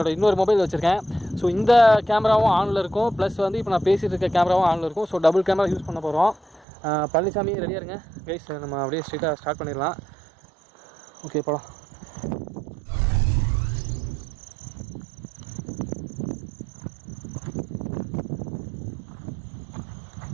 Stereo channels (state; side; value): drops out; left; at 6.7 s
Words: இன்னொரு மொபைல் வச்சுருக்கேன். ஸோ இந்த கேமராவும் ஆனில் இருக்கும், ப்ளஸ் வந்து இப்போ நான் பேசிகிட்டு இருக்க கேமராவும் ஆனில் இருக்கும். ஸோ டபுள் கேமரா யூஸ் பண்ண போகிறோம். பழனிசாமி ரெடியாக இருங்க கைஸ், நம்ம அப்படியே ஸ்ட்ரெயிட்டாக ஸ்டார்ட் பண்ணிடலாம். ஓகே, போகலாம்.